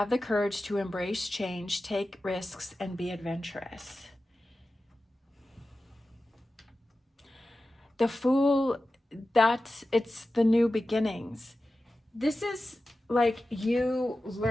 the courage to embrace change, take risks, and be adventurous. The Fool, it's the new beginnings. This is like you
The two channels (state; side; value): normal; both; correlation 0.94